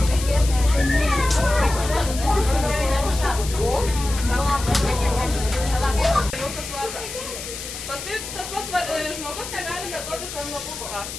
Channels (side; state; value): left; noise; hiss, 9 dB below the sound